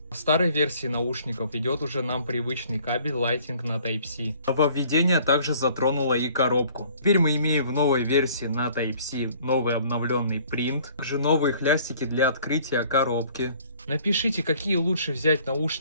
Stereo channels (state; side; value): inverted; both; correlation -0.55